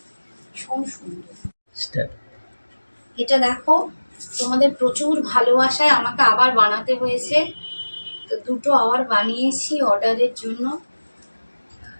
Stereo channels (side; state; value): both; inverted; correlation -1.00